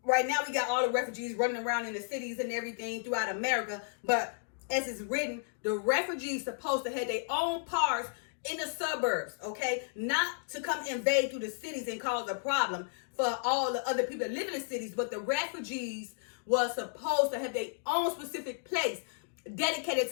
now we got all the refugees running around in the cities and everything throughout America, but as it's written, the refugees supposed to have their own parts in the suburbs, okay? Not to come invade through the cities and cause a problem for all the other people that live in the cities, but the refugees was supposed to have their own specific place dedicated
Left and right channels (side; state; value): right; silent; digital silence